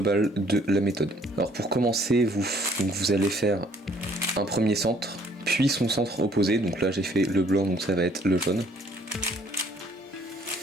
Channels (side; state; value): both; normal; correlation 0.61